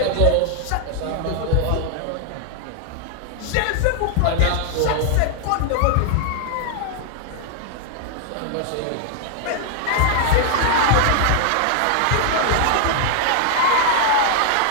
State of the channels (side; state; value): both; different; correlation 0.00